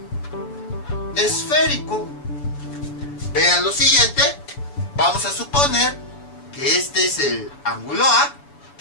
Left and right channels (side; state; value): right; late; 7.0 ms